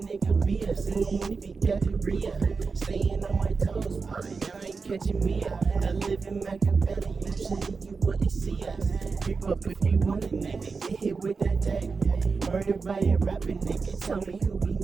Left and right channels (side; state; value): left; quieter; 4.7 dB